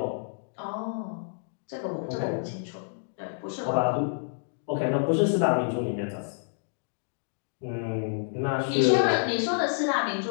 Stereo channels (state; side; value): silent; right; digital silence